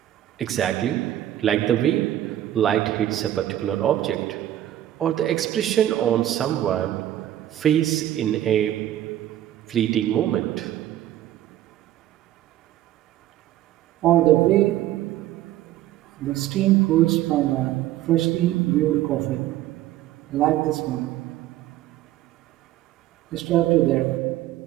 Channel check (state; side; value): quieter; left; 13.1 dB